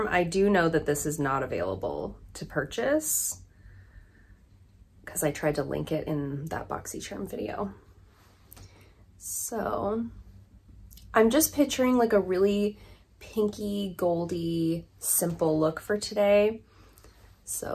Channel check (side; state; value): both; identical; correlation 1.00